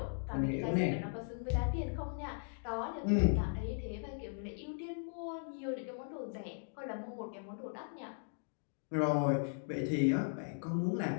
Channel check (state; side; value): silent; right; digital silence